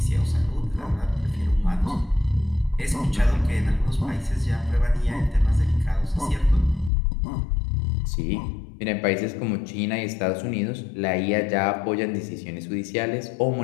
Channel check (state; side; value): drops out; right; at 6.9 s